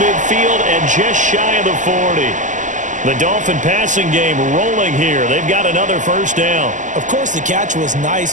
and just shy of the 40. The Dolphin passing game rolling here. They've got another first down. Of course, the catch was nice,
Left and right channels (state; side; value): late; left; 0.37 ms